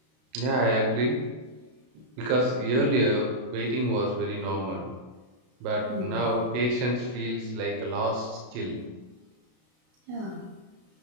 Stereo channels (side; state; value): left; late; 32 ms